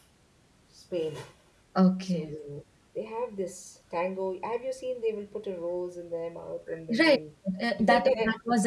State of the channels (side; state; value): both; identical; correlation 1.00